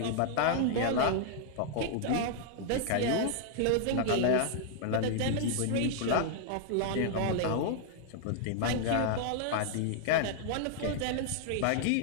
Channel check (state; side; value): different; both; correlation -0.01